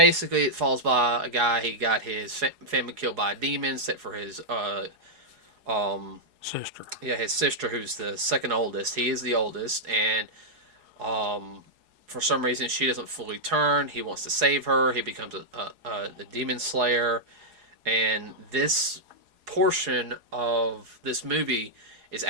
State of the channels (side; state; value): left; late; 4.8 ms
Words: it falls by a guy. He got his family killed by a demon, except for his um Sister. yeah, his sister, who's the second oldest. He is the oldest, and um for some reason she doesn't fully turn. He wants to save her. He becomes a demon slayer, and this portion of this movie is